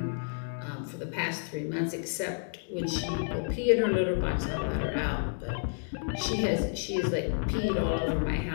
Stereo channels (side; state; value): right; silent; digital silence